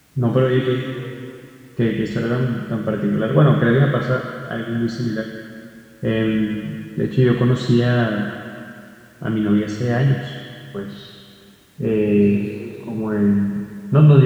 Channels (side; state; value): both; identical; correlation 1.00